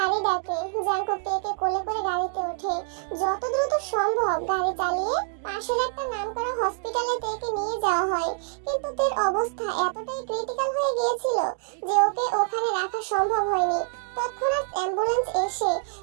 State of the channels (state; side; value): silent; left; 61 dB below the other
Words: ডাকে। জাঙ্কুক তেকে কোলে করে গাড়িতে ওঠে। যত দ্রুত সম্ভব গাড়ি চালিয়ে পাশের একটা নামকরা হসপিটালে তেকে নিয়ে যাওয়া হয়। কিন্তু তের অবস্থা এতটাই ক্রিটিক্যাল হয়ে গিয়েছিল যে ওকে ওখানে রাখা সম্ভব হয়নি। তৎক্ষণাৎ অ্যাম্বুলেন্স এসে